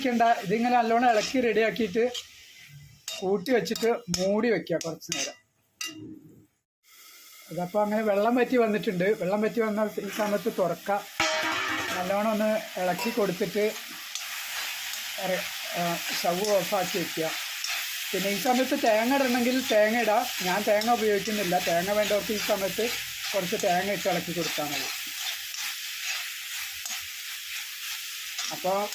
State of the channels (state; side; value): identical; both; correlation 1.00